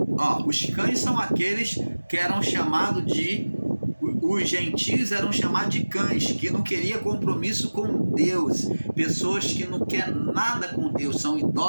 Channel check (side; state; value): both; inverted; correlation -1.00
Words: Os cães são aqueles que eram chamados os gentios eram chamados de cães, que não queriam compromisso com Deus, pessoas que não querem nada com Deus, são